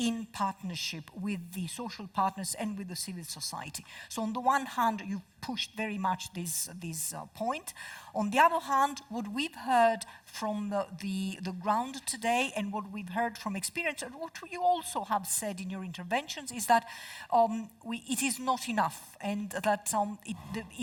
partnership with the social partners and with the civil society. So on the one hand, you pushed very much this point. On the other hand, what we've heard from the ground today and what we've heard from experience, and what you also have said in your interventions, is that it is not enough, and that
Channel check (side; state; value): both; identical; correlation 1.00